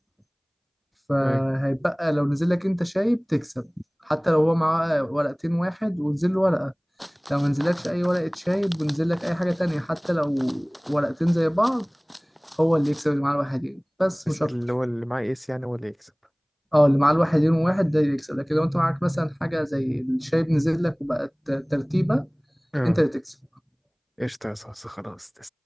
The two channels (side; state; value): both; identical; correlation 1.00